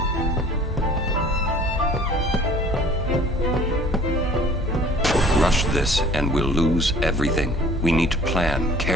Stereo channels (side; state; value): both; normal; correlation 0.50